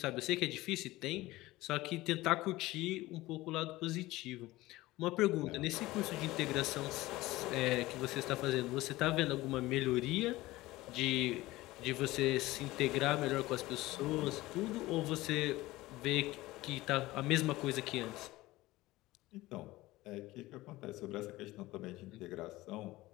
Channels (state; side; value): quieter; right; 18.5 dB